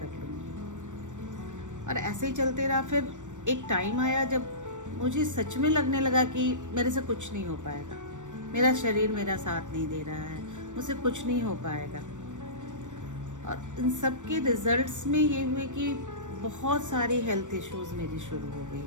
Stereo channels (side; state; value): left; late; 0.85 ms